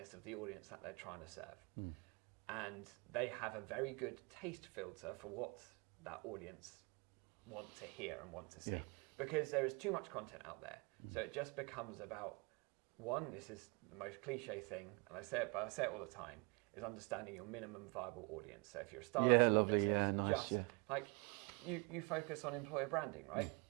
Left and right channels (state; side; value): quieter; left; 30.6 dB